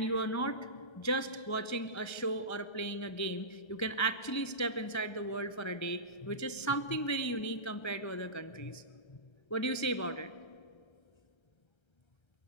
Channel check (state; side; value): late; right; 1.3 ms